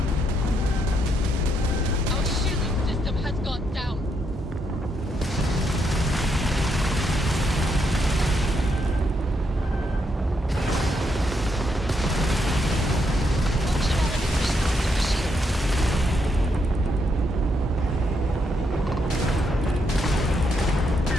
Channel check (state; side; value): normal; both; correlation 0.78